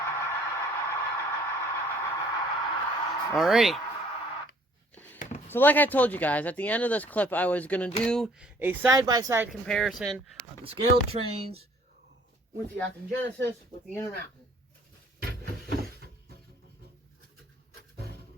Alrighty. So like I told you guys, at the end of this clip, I was going to do a side-by-side comparison of the Scaletrains with the Acton Genesis with the Intermountain.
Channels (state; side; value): normal; both; correlation 0.58